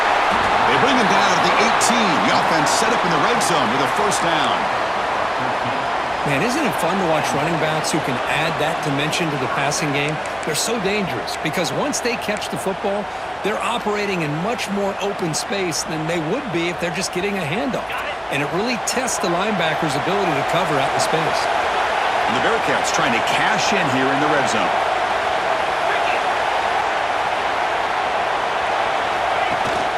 They bring him down at the set up in the red zone with a first down. Man, isn't it fun to watch running backs who can add that dimension to the passing game? They're so dangerous because once they catch the football, they're operating in much more open space than they would be if they're just getting a handoff. And it really tests the linebacker's ability to cover out the space. And the Bearcats trying to cash in here in the red zone.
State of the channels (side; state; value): both; identical; correlation 1.00